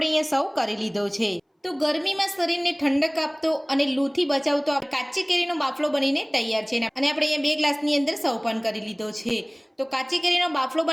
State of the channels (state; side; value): identical; both; correlation 1.00